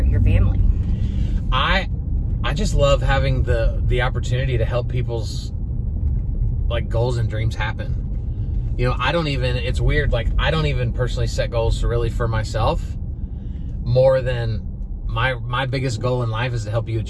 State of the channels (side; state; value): both; identical; correlation 1.00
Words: family. I just love having the opportunity to help people's like goals and dreams happen. It's weird, like I don't even personally set goals really for myself, more than my biggest goal in life is to help you